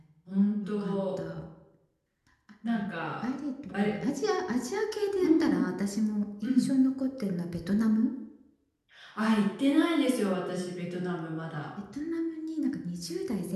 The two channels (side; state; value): both; identical; correlation 1.00